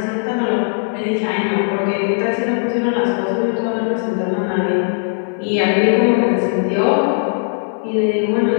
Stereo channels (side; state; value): right; silent; 65 dB below the other